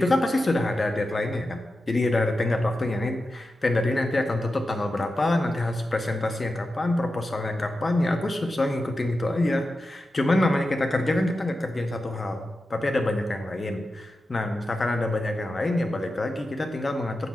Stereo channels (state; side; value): normal; both; correlation 0.91